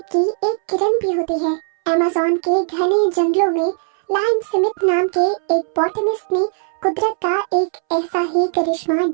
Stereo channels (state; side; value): silent; left; 67 dB below the other